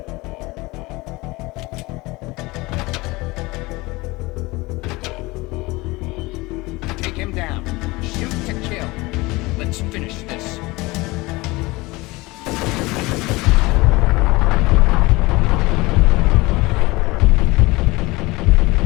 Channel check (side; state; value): right; quieter; 22.3 dB